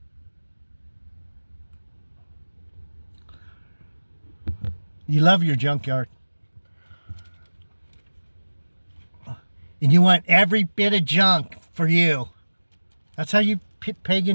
You love your junkyard. And you want every bit of junk for you. That's how you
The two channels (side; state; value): both; inverted; correlation -1.00